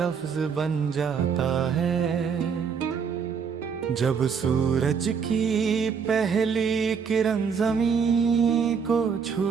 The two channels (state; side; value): quieter; left; 6.4 dB